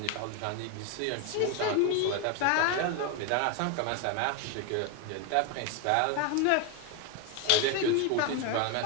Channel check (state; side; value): different; both; correlation 0.01